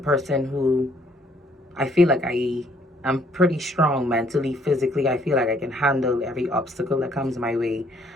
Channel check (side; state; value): both; normal; correlation 0.65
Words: who I feel like I'm pretty strong mentally, physically. I feel like I can handle every obstacle that comes my way.